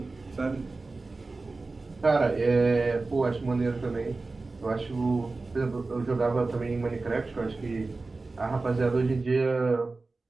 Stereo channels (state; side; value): quieter; left; 3.6 dB